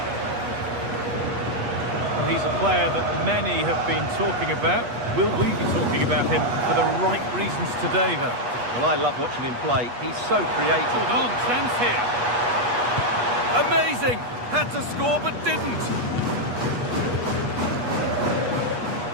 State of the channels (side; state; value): left; late; 8.3 ms